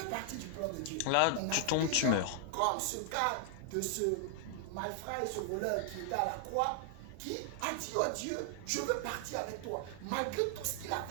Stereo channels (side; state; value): both; different; correlation 0.00